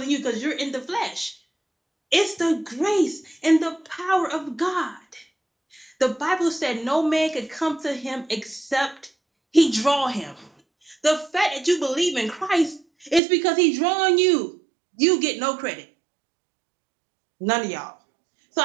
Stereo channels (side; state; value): left; drops out; at 13.2 s